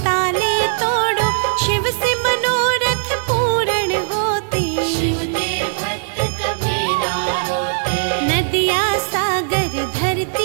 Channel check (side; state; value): left; silent; digital silence